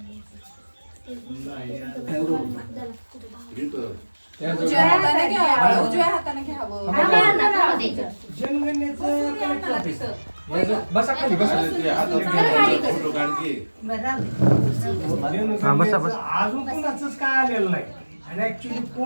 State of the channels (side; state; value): both; inverted; correlation -1.00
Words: उजव्या हाताने घ्यावं. उजव्या हाताने घ्यावं. बसा खाली बसा. फोटो काढ की. हा बसा बस. अजून कोणाचंच काय आलेलं नाही आणि ऍक्च्युली